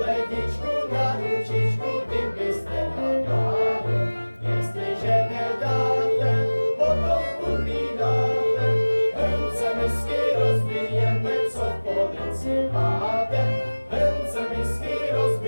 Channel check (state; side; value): inverted; both; correlation -1.00